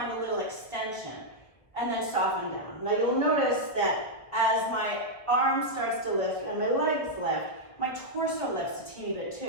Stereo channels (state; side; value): late; right; 1.1 ms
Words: a little extension and then soften down. Now you'll notice that as my arm starts to lift and my legs lift, my torso lifts a teeny bit